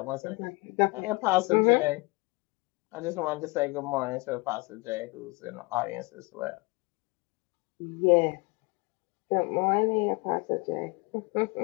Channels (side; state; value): right; quieter; 26.0 dB